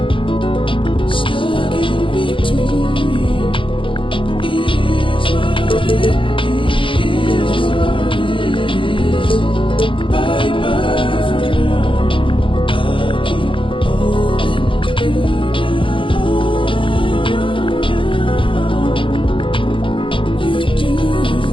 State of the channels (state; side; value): late; right; 0.25 ms